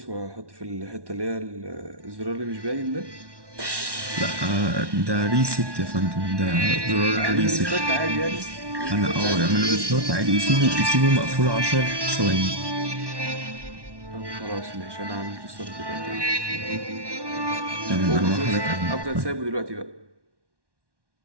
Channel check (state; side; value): late; left; 1.1 ms